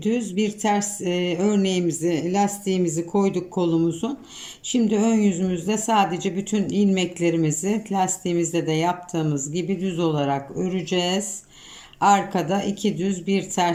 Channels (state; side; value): identical; both; correlation 1.00